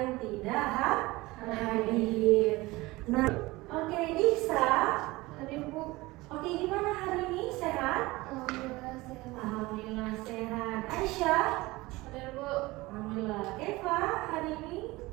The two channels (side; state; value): left; quieter; 20.8 dB